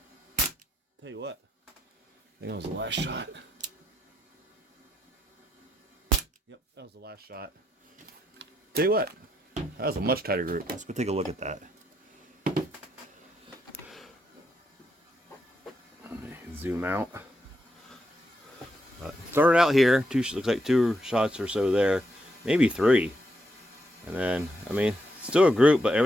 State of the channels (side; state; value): both; normal; correlation 0.79